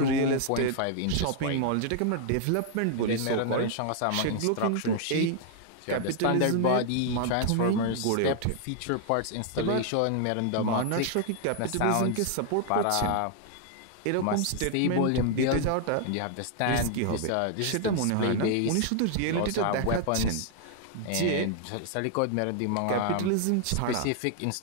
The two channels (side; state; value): both; different; correlation 0.00